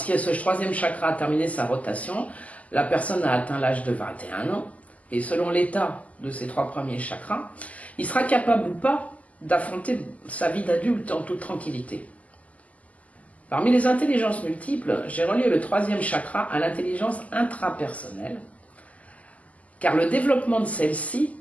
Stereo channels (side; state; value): right; late; 0.072 ms